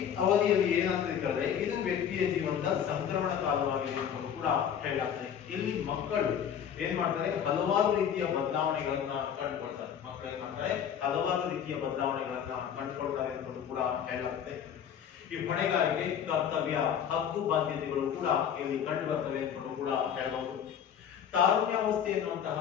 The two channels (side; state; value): right; quieter; 8.6 dB